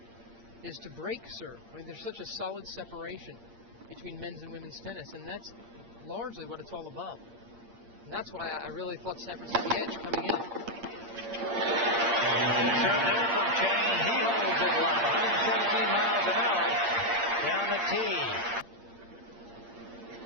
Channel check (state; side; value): late; left; 8.7 ms